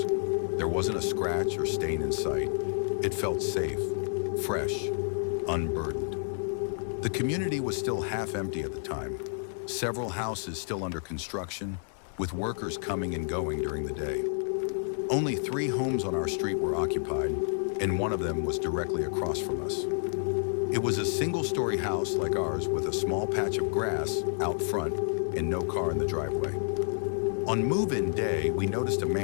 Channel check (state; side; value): silent; right; digital silence